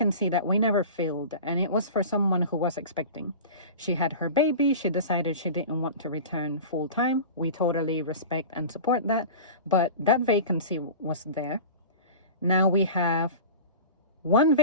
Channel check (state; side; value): inverted; both; correlation -0.34